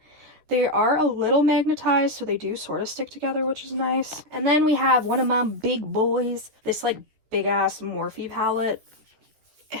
They are a little magnetized, so they do sort of stick together, which is nice. And then we have one of my big boys, this, like, big-ass Morphe palette.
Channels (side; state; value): left; late; 14 ms